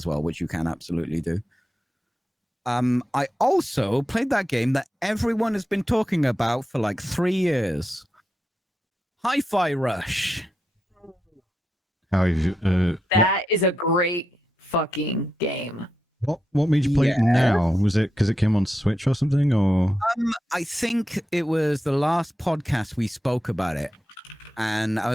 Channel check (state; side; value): normal; both; correlation 0.87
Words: well, which you can absolutely do. I also played that game that everyone has been talking about for like 3 years. Hifi Rush. That is a great fucking game. What made you play it now? Was it because it came on Switch or something, or? I think it was the last podcast we spoke about it, and I